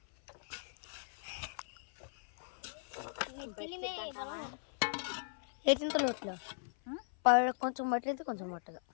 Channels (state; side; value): silent; right; 52 dB below the other